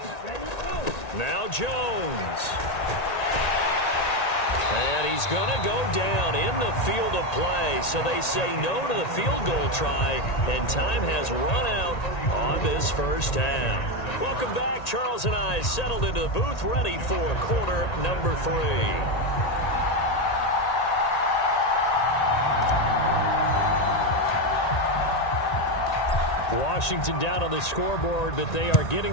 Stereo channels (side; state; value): right; late; 1.9 ms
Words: Now Jones. And he's going to go down in the field of play. So they say no to the field goal try, and time has run out on this first half. Welcome back. Charles and I settled into the booth, ready for quarter number 3. Washington down on the scoreboard, but they are